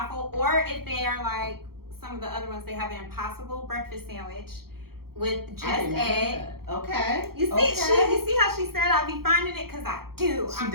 or if they are like some of the other ones, they have an Impossible breakfast sandwich with just I didn't know egg. that. Okay. You see, okay. you see how she said I'll be finding it because I do. She I'm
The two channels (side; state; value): left; late; 0.94 ms